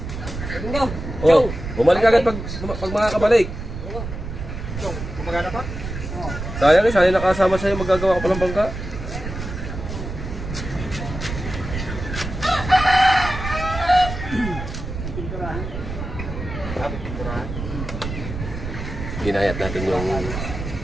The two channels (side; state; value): right; noise; rumble, 7 dB below the sound